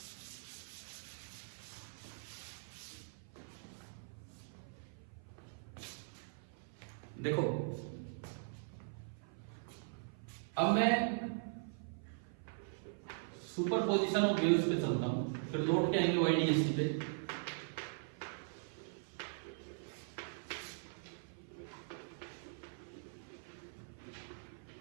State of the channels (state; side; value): silent; left; 50 dB below the other